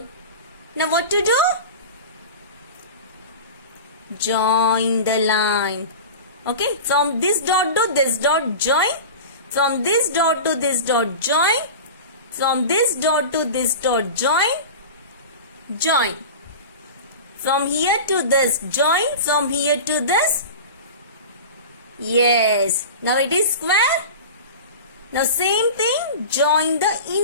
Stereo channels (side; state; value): both; inverted; correlation -0.32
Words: Now what to do? join the line. Okay, from this dot to this dot join, from this dot to this dot join, from this dot to this dot join, join. From here to this join, from here to this. Yes, now it is square. Now same thing, join the